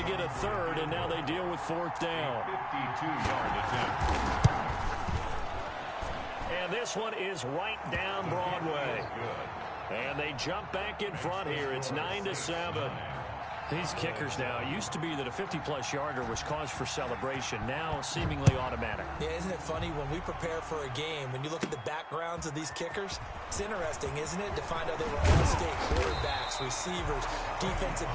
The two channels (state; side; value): identical; both; correlation 1.00